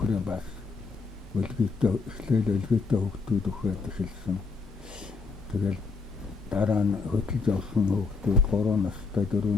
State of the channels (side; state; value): right; quieter; 4.6 dB